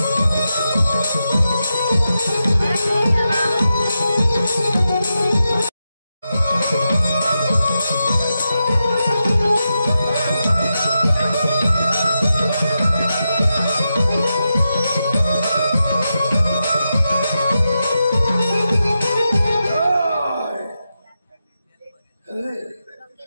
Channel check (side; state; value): both; inverted; correlation -0.88